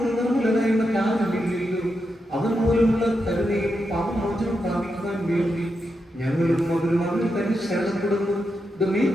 നിർമ്മലനായ മറ്റാരുമില്ലല്ലോ. അവൻ മൂലമുള്ള കരുണയും പാപമോചനം പ്രാപിക്കുവാൻ വേണ്ടി ഞങ്ങളും അവരും അവരിൽ തന്നെ ശരണപ്പെടുന്നു.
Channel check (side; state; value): both; normal; correlation 0.86